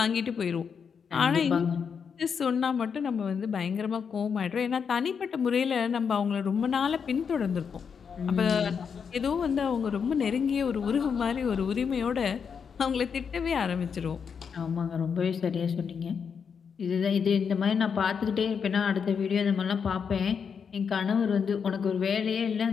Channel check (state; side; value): quieter; right; 6.5 dB